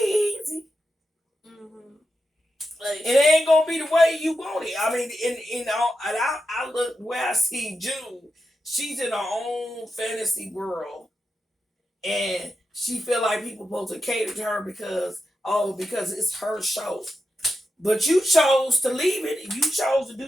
easy. Mm-hmm. Like, it ain't gonna be the way you want it. I mean, I look where I see June. She's in her own fantasy world, and she feel like people supposed to cater to her because it's her show. But you chose to leave it, and you chose to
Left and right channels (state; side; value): normal; both; correlation 0.89